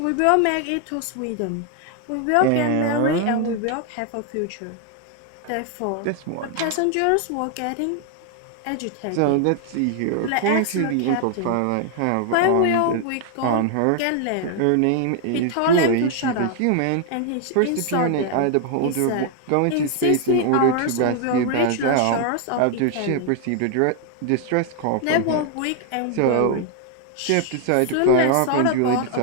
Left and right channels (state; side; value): different; both; correlation 0.00